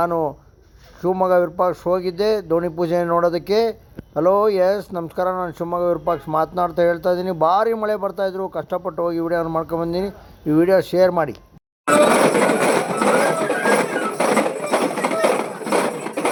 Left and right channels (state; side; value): identical; both; correlation 1.00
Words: ಶಿವಮೊಗ್ಗ ವಿರೂಪಾಕ್ಷ ಹೋಗಿದ್ದೆ ದೋಣಿ ಪೂಜೆ ನೋಡೋದಕ್ಕೆ. ಹಲೋ, ಎಸ್ ನಮಸ್ಕಾರ, ನಾನು ಶಿವಮೊಗ್ಗ ವಿರೂಪಾಕ್ಷ ಮಾತನಾಡ್ತಾ ಹೇಳ್ತಾ ಇದ್ದೀನಿ. ಭಾರಿ ಮಳೆ ಬರ್ತಾಯಿದ್ರು, ಕಷ್ಟಪಟ್ಟು ಹೋಗಿ ವಿಡಿಯೋನ ಮಾಡ್ಕೊಂಬಂದಿನಿ. ಈ ವಿಡಿಯೋ ಶೇರ್ ಮಾಡಿ.